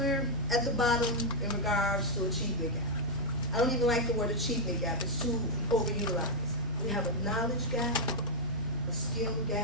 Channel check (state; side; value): normal; both; correlation -0.02